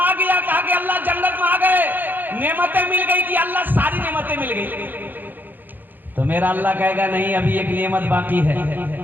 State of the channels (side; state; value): left; late; 0.088 ms